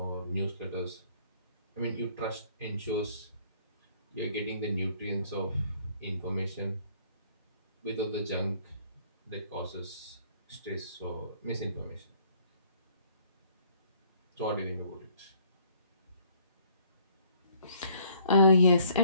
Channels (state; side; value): inverted; both; correlation -0.61